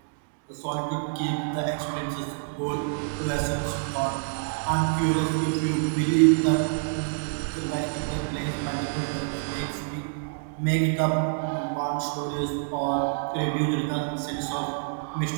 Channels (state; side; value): silent; left; digital silence